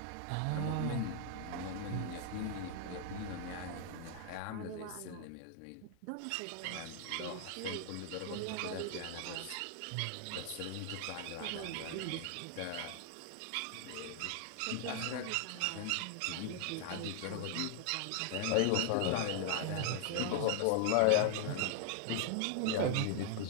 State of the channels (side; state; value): both; different; correlation 0.00